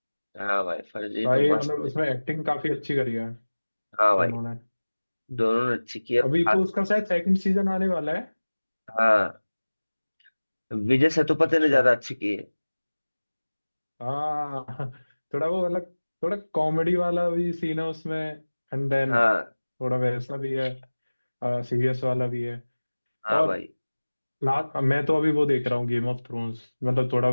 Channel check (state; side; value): inverted; both; correlation -1.00